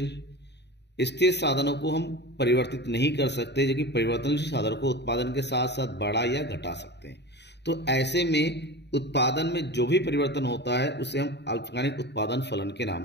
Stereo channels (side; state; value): right; late; 0.50 ms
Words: स्थिर साधनों को हम परिवर्तित नहीं कर सकते, जबकि परिवर्तनशील साधनों को उत्पादन के साथ साथ बढ़ा या घटा सकते हैं। तो ऐसे में उत्पादन में जो भी परिवर्तन होता है उसे हम अल्पकालिक उत्पादन फलन के नाम